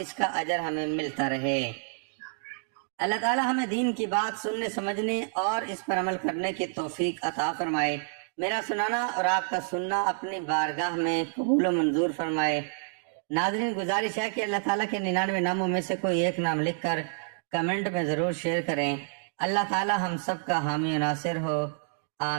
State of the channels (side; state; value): left; silent; digital silence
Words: کا اجر ہمیں ملتا رہے۔ اللہ تعالی ہمیں دین کی بات سننے سمجھنے اور اس پر عمل کرنے کی توفیق عطا فرمائے۔ میرا سنانا اور آپ کا سننا اپنی بارگاہ میں قبول و منظور فرمائے۔ ناظرین، گزارش ہے کہ اللہ تعالیٰ کے 99 ناموں میں سے کوئی ایک نام لکھ کر کمنٹ میں ضرور شیئر کریں۔ اللہ تعالیٰ ہم سب کا حامی و ناصر ہو،